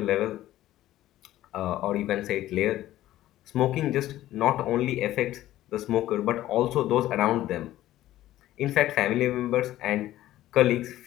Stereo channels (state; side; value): quieter; right; 14.4 dB